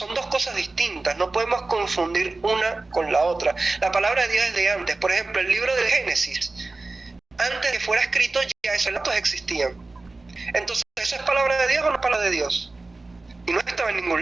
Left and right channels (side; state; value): left; quieter; 3.4 dB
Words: dos cosas distintas, no podemos confundir una con la otra. La palabra de Dios es de antes. Por ejemplo, el libro del Génesis, antes de que fuera escrito, ya esos relatos existían. Entonces, ¿eso es palabra de Dios o no es palabra de Dios? Y no estaba en